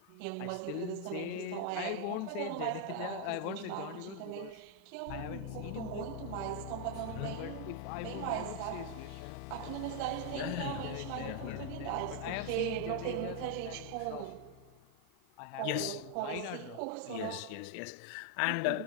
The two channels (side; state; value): both; different; correlation 0.00